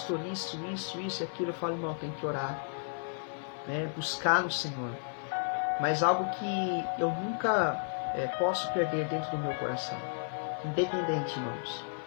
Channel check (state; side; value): silent; right; 56 dB below the other